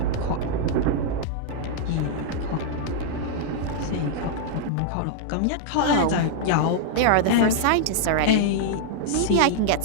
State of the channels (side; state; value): both; different; correlation -0.01